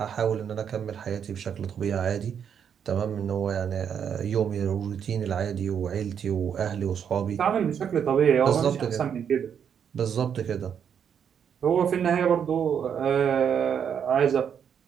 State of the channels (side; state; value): left; quieter; 7.9 dB